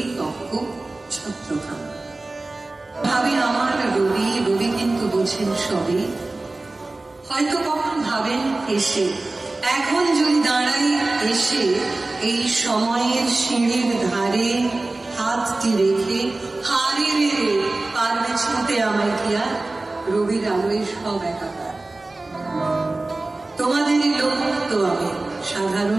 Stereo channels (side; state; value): left; quieter; 3.0 dB